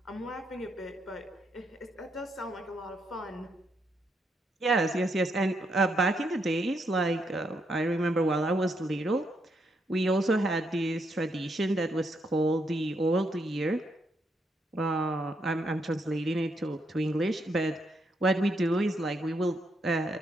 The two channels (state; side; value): normal; both; correlation 0.78